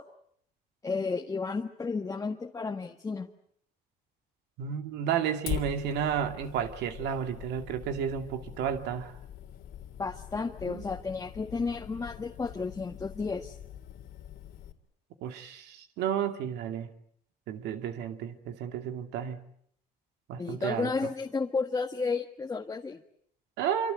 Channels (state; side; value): normal; both; correlation 0.42